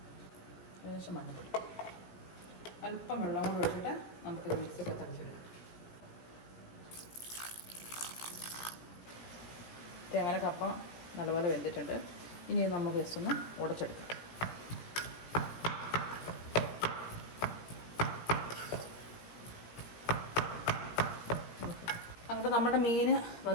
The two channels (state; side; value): late; right; 17 ms